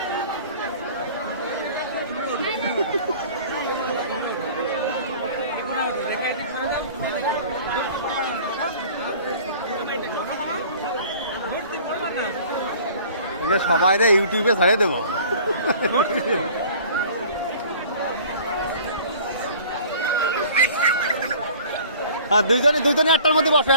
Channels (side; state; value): both; inverted; correlation -0.47